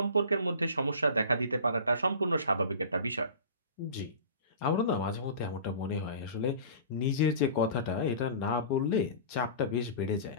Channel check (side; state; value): both; inverted; correlation -0.39